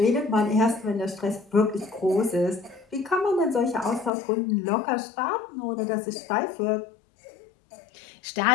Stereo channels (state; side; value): drops out; right; at 4.1 s